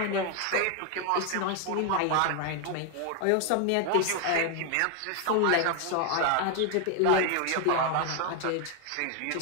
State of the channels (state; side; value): different; both; correlation 0.01